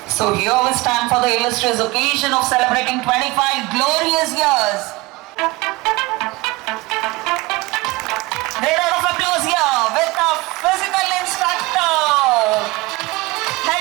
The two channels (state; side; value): quieter; left; 22.5 dB